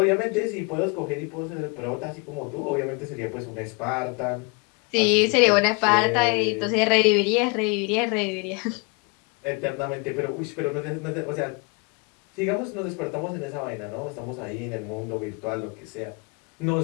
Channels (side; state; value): right; quieter; 31.0 dB